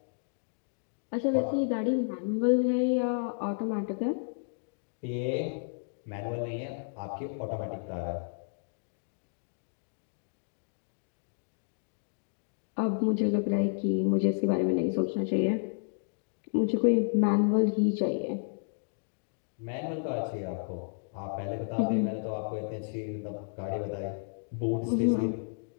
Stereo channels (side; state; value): right; silent; digital silence